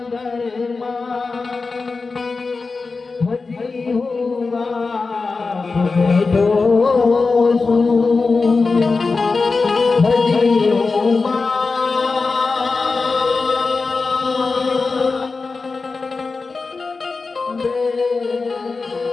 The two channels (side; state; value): right; quieter; 4.2 dB